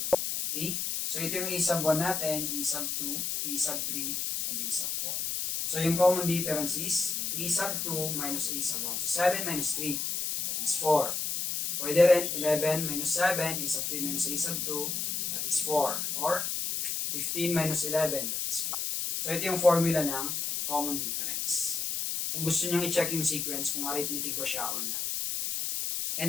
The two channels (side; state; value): left; noise; hiss, 1 dB below the sound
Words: 2. Okay? So, ito yung a sub 1 natin, a sub 2, a sub 3, and a sub 4. So, yung common difference is a sub 2 minus a sub 1. So, 7 minus 3, that is 4. Pwede rin 11 minus 7, a sub 3 minus a sub 2, that is 4. Or 15 minus 11, that is 4. So, ito yung formula ng common difference. Kung gusto nyo i-check yung sequence, kung arithmetic ba siya or not.